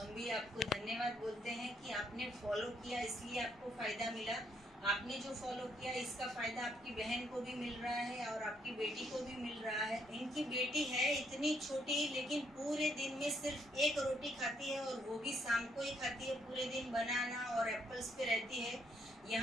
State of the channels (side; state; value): both; normal; correlation 0.72